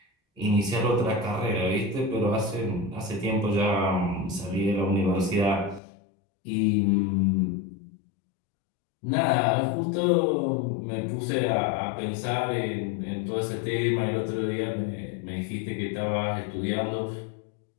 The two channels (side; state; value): right; drops out; at 5.8 s